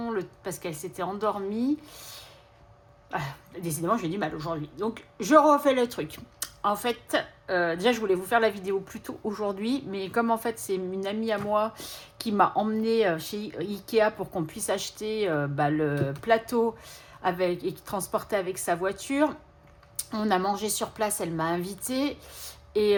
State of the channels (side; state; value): both; identical; correlation 1.00